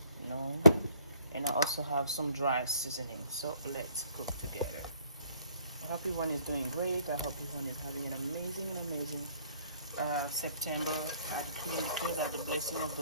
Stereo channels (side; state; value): both; inverted; correlation -0.60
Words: you know, and I also have some dry seasoning. So let's cook together. I hope everyone is doing great. I hope everyone is having an amazing September. I decree and declare that the blessing of